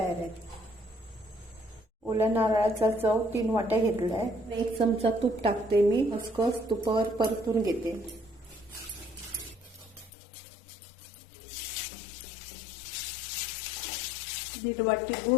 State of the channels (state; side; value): drops out; right; at 10.1 s